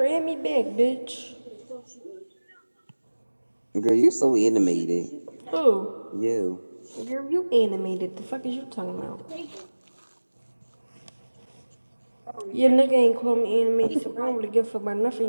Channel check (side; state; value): both; inverted; correlation -1.00